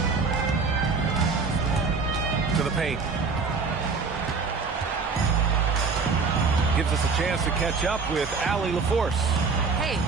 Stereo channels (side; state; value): left; quieter; 4.7 dB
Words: To the paint. Gives us a chance to catch up with Allie LaForce. Hey,